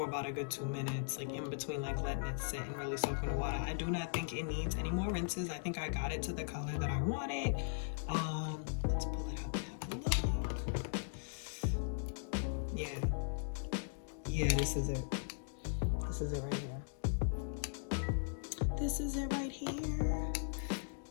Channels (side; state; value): right; silent; digital silence